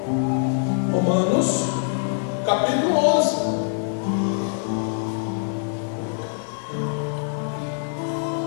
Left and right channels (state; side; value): silent; right; 63 dB below the other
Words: Romanos, capítulo 11.